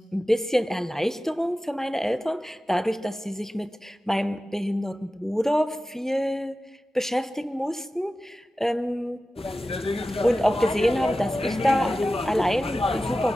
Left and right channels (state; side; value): normal; both; correlation 0.94